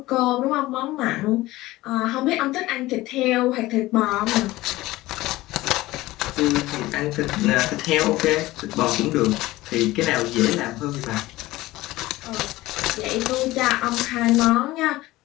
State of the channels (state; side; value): quieter; right; 18.1 dB